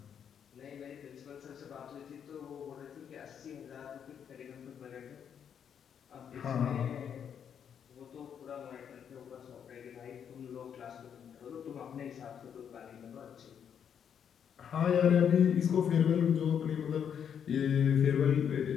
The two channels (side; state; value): right; quieter; 8.2 dB